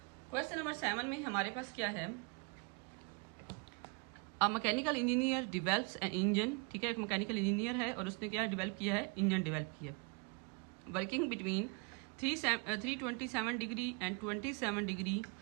क्वेश्चन नंबर 7 में हमारे पास क्या है, a mechanical engineer develops an engine, ठीक है। एक मैकेनिकल इंजीनियर है और उसने क्या डेवलप किया है, इंजन डेवलप किया, working between 327 degree and 27 degree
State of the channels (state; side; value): quieter; left; 32.6 dB